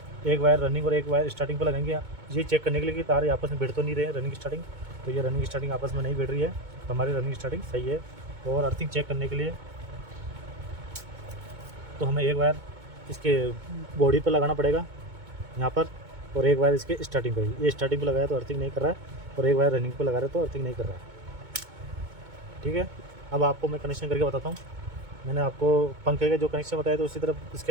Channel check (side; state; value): left; late; 2.2 ms